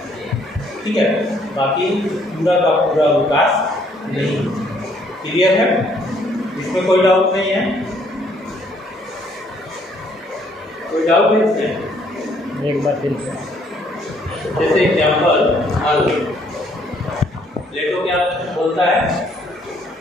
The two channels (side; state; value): both; normal; correlation 0.66